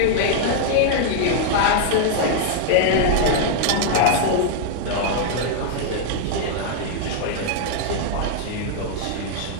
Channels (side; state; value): both; different; correlation -0.01